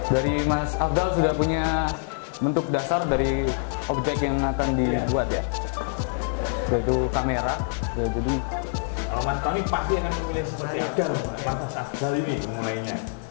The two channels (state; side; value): silent; right; digital silence